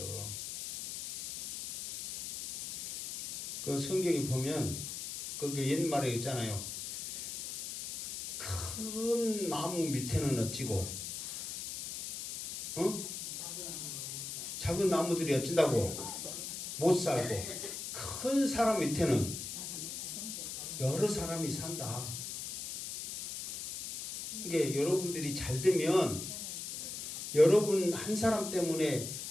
그 성경에 보면 거기 옛말에 있잖아요. 큰 나무 밑에는 어찌고 작은 나무들이 어쩐다고 못 살고 큰 사람 밑에는 여러 사람이 산다. 이게 여러분들이 잘 되면 여러분 한 사람 때문에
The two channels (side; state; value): left; noise; hiss, 7 dB below the sound